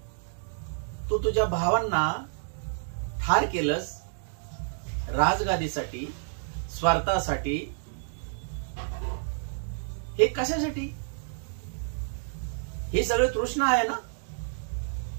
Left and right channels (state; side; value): silent; left; digital silence